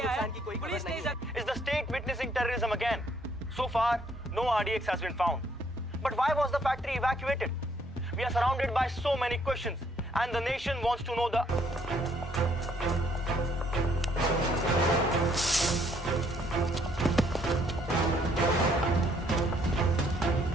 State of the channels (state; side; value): normal; both; correlation 0.67